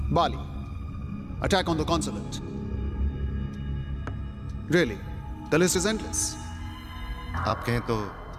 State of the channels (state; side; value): identical; both; correlation 1.00